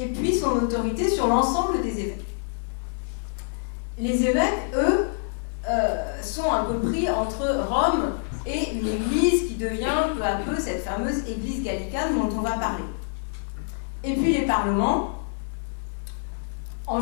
puis son autorité sur l'ensemble des évêques. Les évêques, eux, sont un peu pris entre Rome et une église qui devient peu à peu cette fameuse église gallicane dont on va parler. Et puis les parlements, en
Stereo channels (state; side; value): silent; right; digital silence